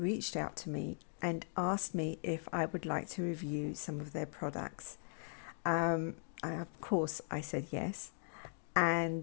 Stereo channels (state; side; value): silent; right; digital silence